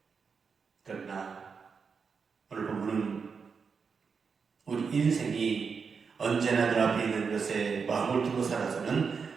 그러나 오늘 본문은 우리 인생이 언제나 눈앞에 있는 것에 마음을 두고 살아서는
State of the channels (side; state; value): left; quieter; 5.6 dB